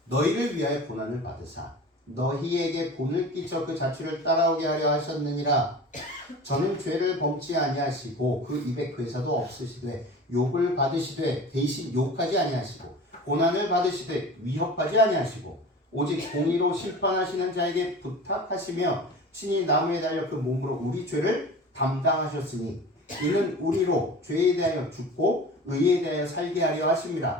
너희를 위하여 고난을 받으사 너희에게 본을 끼쳐 그 자취를 따라오게 하려 하셨느니라. 저는 죄를 범치 아니하시고 그 입에 괴사도 없으시되 욕을 받으시되 대신 욕하지 아니하시고 고난을 받으시되 위협하지 아니하시고 오직 공의로 심판하시는 자에게 부탁하시며 친히 나무에 달려 그 몸으로 우리 죄를 담당하셨으니 이는 우리로 죄에 대하여 죽고 의에 대하여 살게 하려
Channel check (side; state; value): both; normal; correlation 0.37